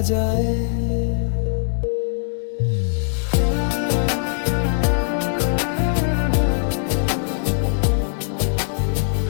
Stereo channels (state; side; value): silent; right; digital silence